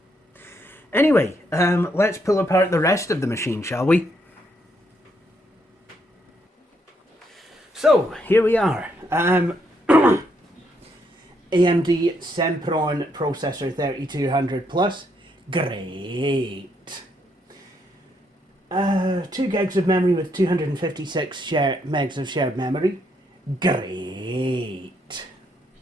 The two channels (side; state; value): both; normal; correlation 0.75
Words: Anyway, let's pull apart the rest of the machine, shall we? So, here we are. AMD Sempron processor 3200 plus. Great. 2 gigs of memory with 256 megs of shared memory. Great.